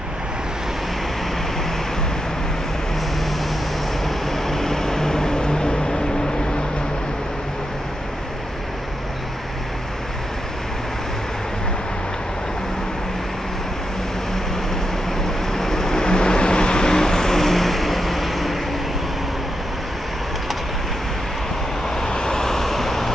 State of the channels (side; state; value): both; normal; correlation 0.85